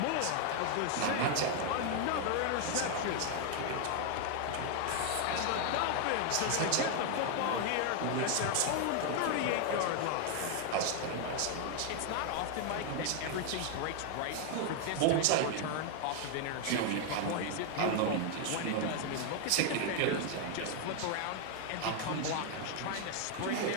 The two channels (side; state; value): both; different; correlation 0.00